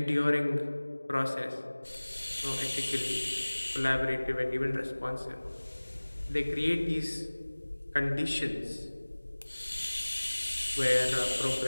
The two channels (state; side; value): inverted; both; correlation -1.00